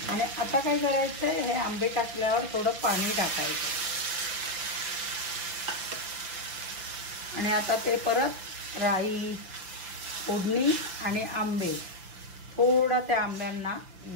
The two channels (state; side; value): late; left; 5.7 ms